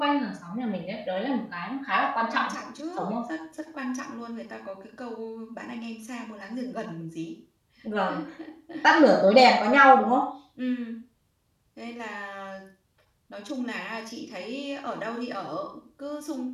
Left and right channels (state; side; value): identical; both; correlation 1.00